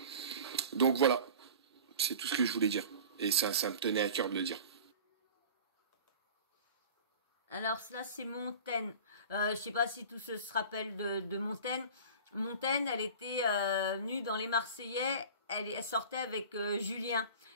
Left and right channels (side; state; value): both; inverted; correlation -0.38